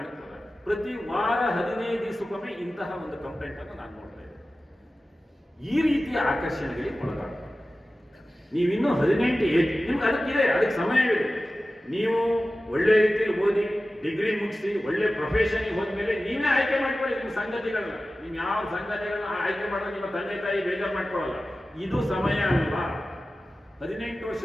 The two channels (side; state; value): both; normal; correlation 0.95